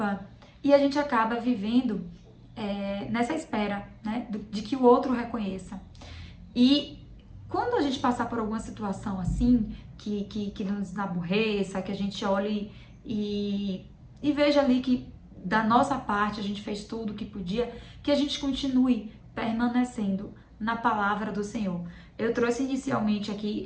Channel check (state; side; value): identical; both; correlation 1.00